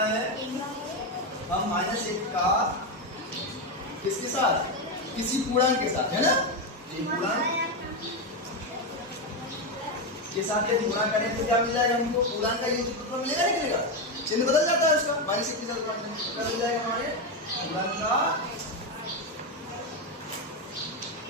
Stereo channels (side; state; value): both; normal; correlation 0.09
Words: है, हम -1 का किसके साथ, किसी पूर्णांक के साथ, है ना, ये पूर्णांक के साथ यदि गुणा करें तो क्या मिल जाएगा हमको, पूर्णांक का योग तो मिलेगा नहीं मिलेगा, चिन्ह बदल जाता है उसका, -1 के साथ गुणा करें तो क्या मिल जाएगा हमारे पूर्णांक का